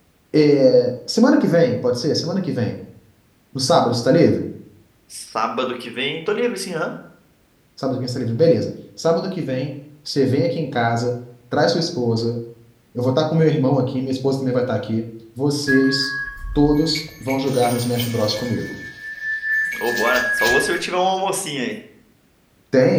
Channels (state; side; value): identical; both; correlation 1.00